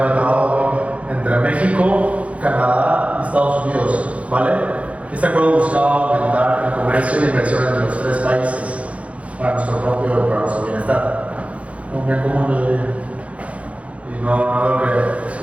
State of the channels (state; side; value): late; left; 0.064 ms